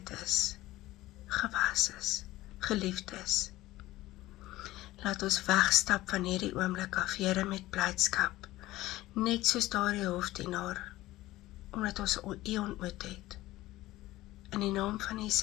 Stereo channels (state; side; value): quieter; right; 17.0 dB